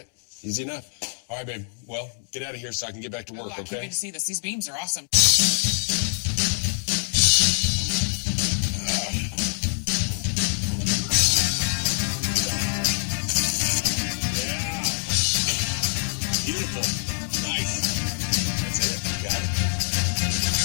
Easy enough. All right, babe. Well, get out of here so I can get back to work, I can't okay? wait to see this. These beams are awesome. Yeah. Beautiful. Nice. That's it. Got it.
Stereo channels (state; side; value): silent; right; digital silence